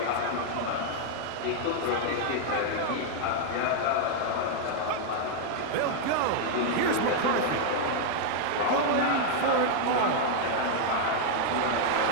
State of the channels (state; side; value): different; both; correlation 0.00